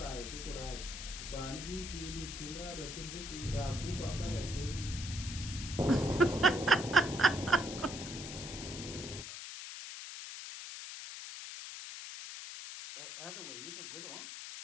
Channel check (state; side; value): noise; left; hiss, 8 dB below the sound